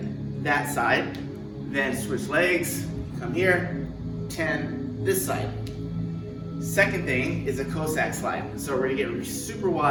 that side, then switch legs, come here, 10 this side. Second thing is a Cossack slide. So we're gonna get super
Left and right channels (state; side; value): identical; both; correlation 1.00